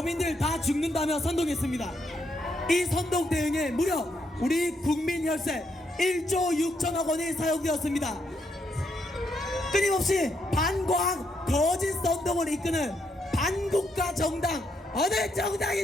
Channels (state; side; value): normal; both; correlation 0.77